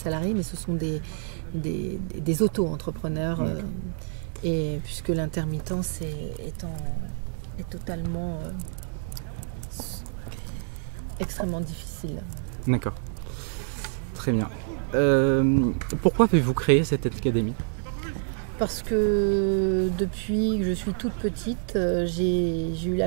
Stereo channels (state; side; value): silent; left; 60 dB below the other